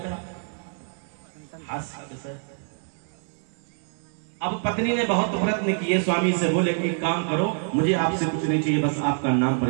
है। अब पत्नी ने बहुत प्रयत्न किए, स्वामी से बोले कि काम करो, मुझे आपसे कुछ नहीं चाहिए, बस आपका नाम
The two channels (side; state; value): left; silent; 61 dB below the other